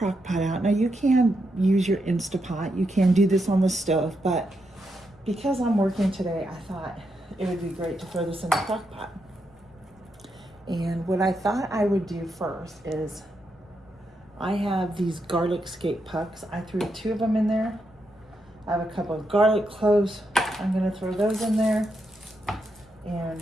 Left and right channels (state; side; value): noise; left; rumble, 28 dB below the sound